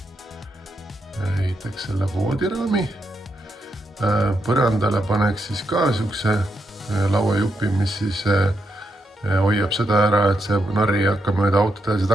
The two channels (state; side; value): normal; both; correlation 0.82